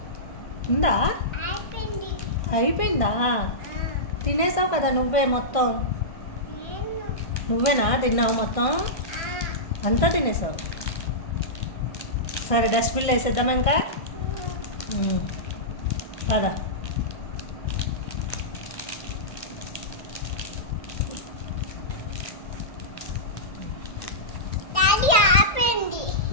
ఉందా? అయిపోయిందా? తినేసావు కదా నువ్వే మొత్తం. నువ్వేనా తిన్నావు మొత్తం? అంతా తినేసావు. సరే డస్ట్బిన్లో వేసేద్దామా ఇంకా? పదా.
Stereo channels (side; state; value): right; late; 1.6 ms